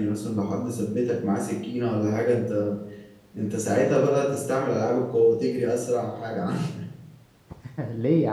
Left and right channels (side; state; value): both; identical; correlation 1.00